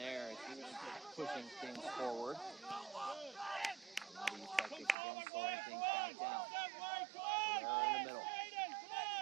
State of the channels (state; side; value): drops out; left; at 5.0 s